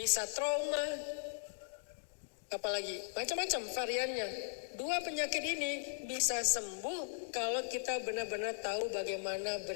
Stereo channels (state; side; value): silent; right; digital silence